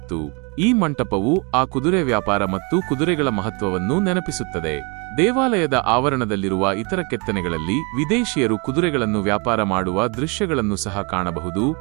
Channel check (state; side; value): quieter; left; 31.6 dB